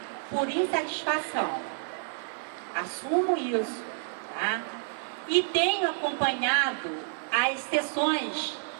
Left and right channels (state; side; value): silent; left; 56 dB below the other